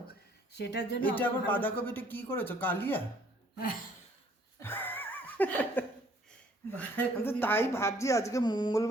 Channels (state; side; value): normal; both; correlation 0.61